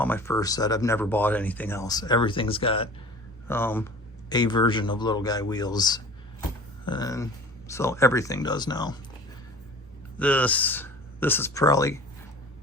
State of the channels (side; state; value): both; normal; correlation 0.41